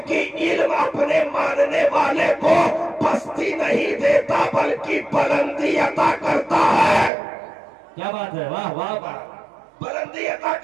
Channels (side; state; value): left; drops out; at 7.1 s